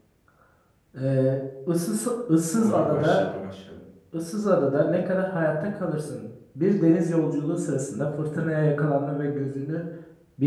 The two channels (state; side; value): identical; both; correlation 1.00